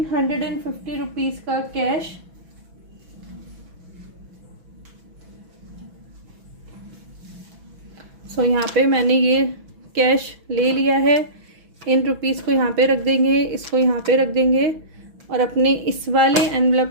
रुपीज़ का कैश। सो यहाँ पे मैंने ये कैश ले लिया है। इन रुपीज़ को यहाँ पे रख देंगे, इसको यहाँ पे रख देंगे और अपने इस वाले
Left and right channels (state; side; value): late; left; 6.1 ms